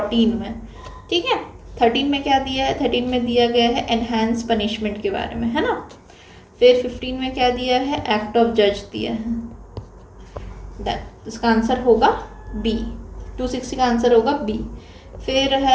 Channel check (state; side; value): identical; both; correlation 1.00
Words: में, ठीक है। 13 में क्या दिया है, 13 में दिया गया है एनहांस पनिशमेंट के बारे में, है ना। फिर 15 में क्या दिया है, एक्ट ऑफ जज दिया है, इसका आंसर होगा बी, 260 का आंसर होगा बी। फिर